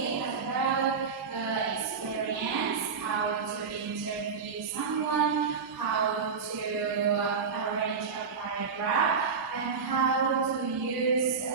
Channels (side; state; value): left; quieter; 5.6 dB